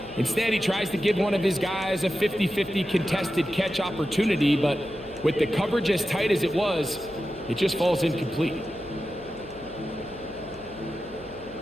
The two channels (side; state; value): left; noise; hum, 22 dB below the sound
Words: instead he tries to give one of his guys a 50-50 contested catch opportunity, but with the coverage as tight as it was, it just falls incomplete.